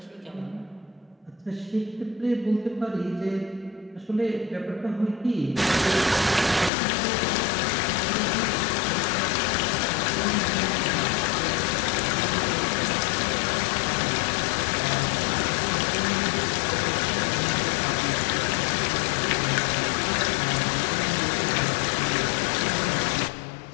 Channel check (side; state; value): right; drops out; at 6.7 s